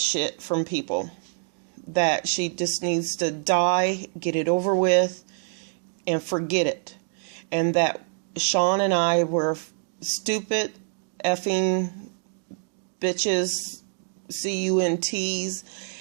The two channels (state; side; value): silent; left; digital silence